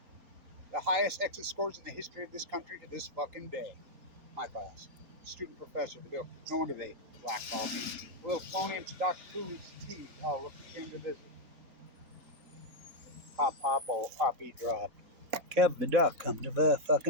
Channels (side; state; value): left; late; 3.9 ms